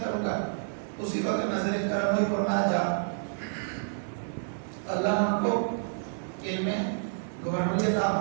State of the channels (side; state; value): left; silent; digital silence